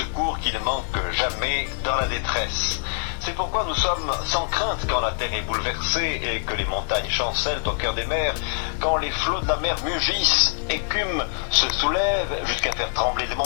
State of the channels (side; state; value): right; silent; digital silence